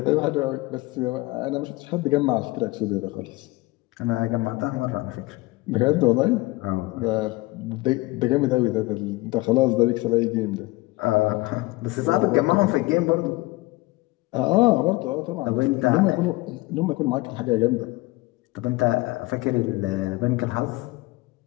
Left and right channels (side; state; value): right; quieter; 21.5 dB